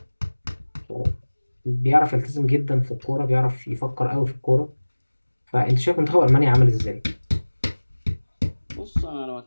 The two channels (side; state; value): both; inverted; correlation -1.00